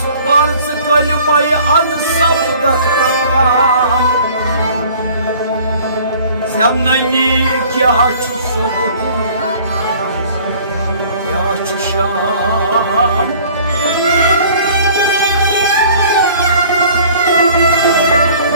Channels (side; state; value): both; inverted; correlation -0.51